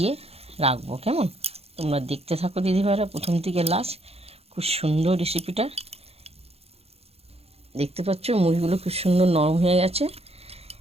রাখবো। কেমন? তোমরা দেখতে থাকো দিদিভাইরা প্রথম থেকে লাস্ট। খুব সুন্দর রেসিপিটা। দেখতে পাচ্ছ মুড়িগুলো খুব সুন্দর নরম হয়ে গেছে।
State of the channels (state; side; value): late; left; 0.29 ms